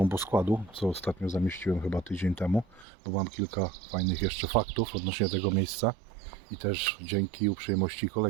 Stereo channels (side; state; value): left; drops out; at 2.9 s